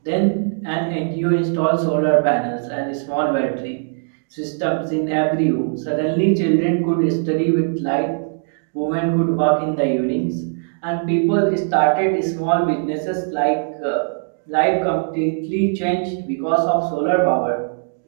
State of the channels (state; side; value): silent; left; digital silence